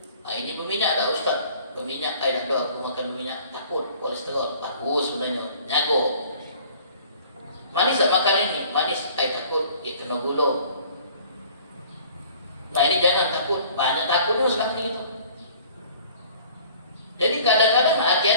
Nah, ini berminyak tak Ustaz? Berminyak, tak ada aku makan berminyak, takut kolesterol, bagus sebenarnya, nyago. Manis tak makan ini? Manis, takut, dia kena gula. Nah ini jangan takut, banyak takut sekarang ni kita. Jadi kadang-kadang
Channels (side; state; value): both; inverted; correlation -0.51